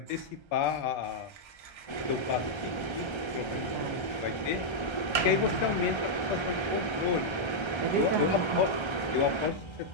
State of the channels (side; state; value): right; late; 1.3 ms